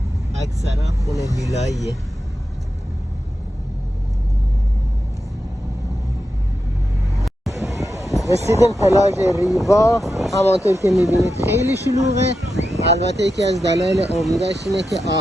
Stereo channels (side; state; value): both; normal; correlation 0.89